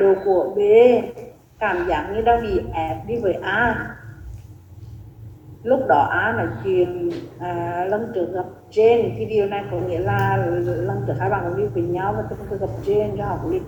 của B cảm giác như đang bị ép đi với A. Lúc đó A nói chuyện lần trước gặp Jane, thì điều này có nghĩa là lần trước hai bạn cũng đi với nhau và từng gặp Jane cho họ cũng đi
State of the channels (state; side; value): identical; both; correlation 1.00